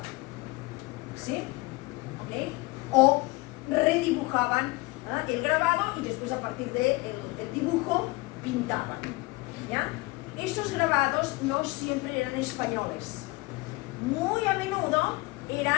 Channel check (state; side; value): quieter; right; 23.3 dB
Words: ¿sí? ¿Okay? O redibujaban el grabado y después a partir del dibujo pintaban, ¿ya? Esos grabados no siempre eran españoles, muy a menudo